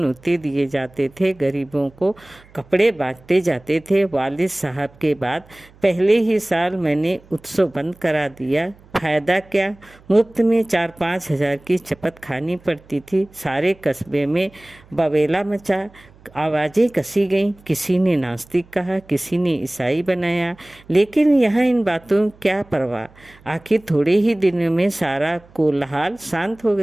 दिए जाते थे, गरीबों को कपड़े बांटते जाते थे। वालिद साहब के बाद पहले ही साल मैंने उत्सव बंद करा दिया। फायदा क्या? मुफ्त में 4-5 हजार की चपत खानी पड़ती थी। सारे कस्बे में बवेला मचा, आवाज़ें कसी गईं। किसी ने नास्तिक कहा, किसी ने ईसाई बनाया, लेकिन यहाँ इन बातों क्या परवाह। आखिर थोड़े ही दिनों में सारा कोलाहल शांत हो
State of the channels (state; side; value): noise; right; hum, 26 dB below the sound